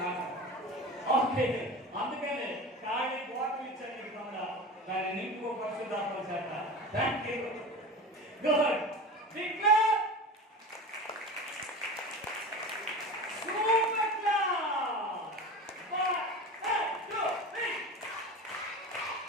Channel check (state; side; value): normal; both; correlation 0.31